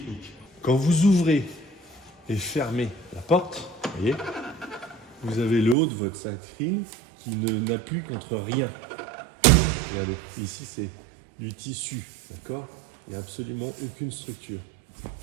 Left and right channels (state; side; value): drops out; left; at 5.8 s